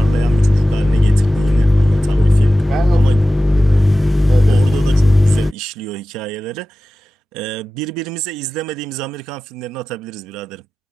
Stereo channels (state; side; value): normal; both; correlation 0.96